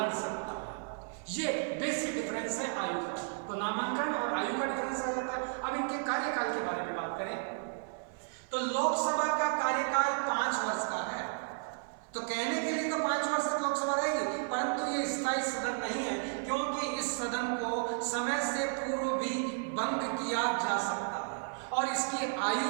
सकता है। ये बेसिक डिफरेंस है आयु का। तो नामांकन और आयु का डिफरेंस आ जाता है। अब इनके कार्यकाल के बारे में बात करें तो लोकसभा का कार्यकाल 5 वर्ष का है। तो कहने के लिए तो 5 वर्ष तक लोकसभा रहेगी, परंतु ये स्थायी सदन नहीं है, क्योंकि इस सदन को समय से पूर्व भी भंग किया जा सकता है और इसकी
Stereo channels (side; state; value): left; silent; 56 dB below the other